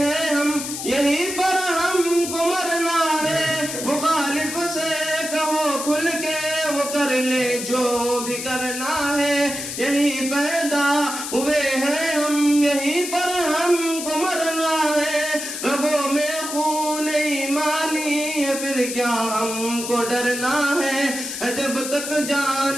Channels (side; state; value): left; noise; hiss, 6 dB below the sound